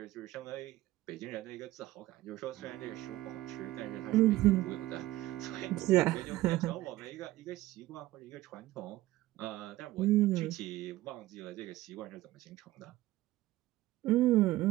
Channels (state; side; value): quieter; left; 16.6 dB